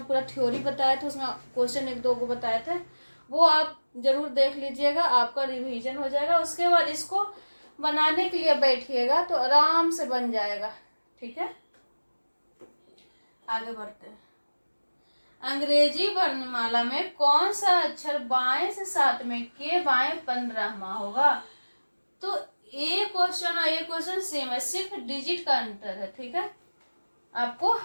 पूरा थ्योरी बताया था, उसमें क्वेश्चन 1-2 को बताए थे, वो आप जरूर देख लीजिएगा, आपका रिवीजन हो जाएगा। उसके बाद इसको बनाने के लिए बैठिएगा तो आराम से बन जाएगा। ठीक है, आगे बढ़ते हैं। अंग्रेजी वर्णमाला में कौन सा अक्षर बाएं से 7वें के बाएं 15वां होगा? तो ये क्वेश्चन और ये क्वेश्चन सेम है, सिर्फ डिजिट का अंतर है। ठीक है, आपको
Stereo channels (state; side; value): inverted; both; correlation -1.00